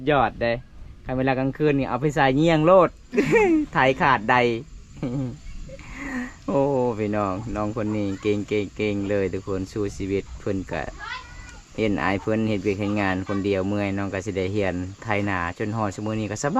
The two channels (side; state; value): both; identical; correlation 1.00